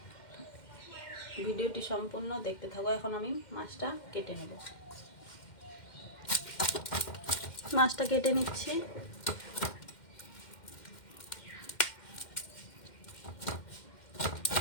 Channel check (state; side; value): late; right; 2.1 ms